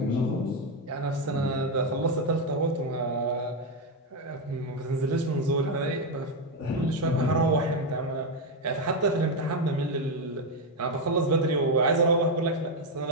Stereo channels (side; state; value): both; normal; correlation 0.06